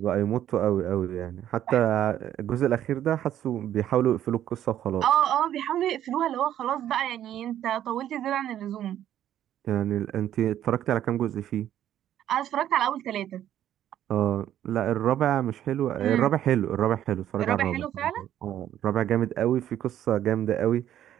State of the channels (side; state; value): left; quieter; 11.4 dB